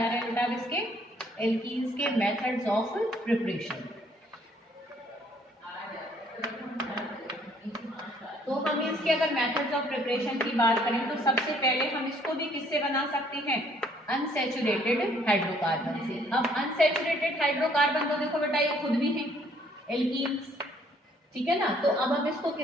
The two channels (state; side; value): normal; both; correlation 0.63